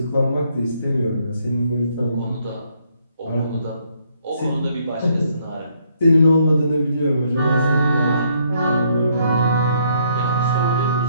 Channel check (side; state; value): both; inverted; correlation -0.70